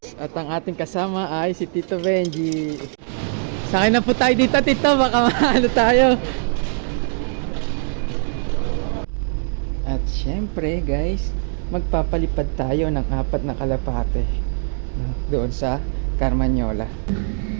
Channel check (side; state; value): left; silent; 62 dB below the other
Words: At ang ating kasama ay si Tito Benji. Sakay na po tayo dito, Tito, baka mahalo tayo. At syempre guys, magpapalipad tayo ng 4 na kalapate doon sa Carmanyola.